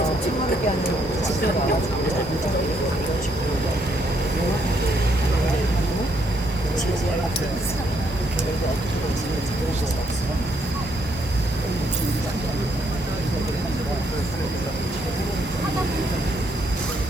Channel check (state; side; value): normal; both; correlation 0.73